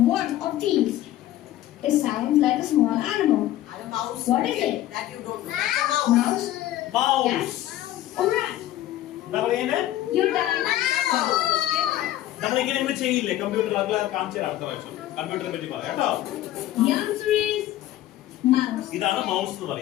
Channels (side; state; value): right; quieter; 13.9 dB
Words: one of these. It sounds like a small animal. അത് mouse. What is it? That you don't know. That's a mouse. Mouse? Mouse. Yes. Alright. എന്താ പറയുന്നത്? Your time starts. നമ്മളിങ്ങനെ ഇങ്ങനെ ചെയ്യില്ലേ കമ്പ്യൂട്ടർ? അത് കാണിച്ചു തരാം അടുത്ത പ്രാവശ്യം. കമ്പ്യൂട്ടറിനെ പറ്റി പറയാം കേട്ടോ. The answer is mouse. ഇതാണ് മൗസ് എന്ന്